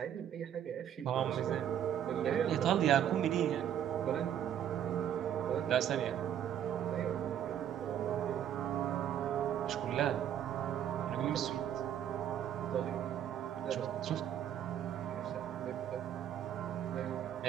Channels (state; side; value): quieter; left; 9.9 dB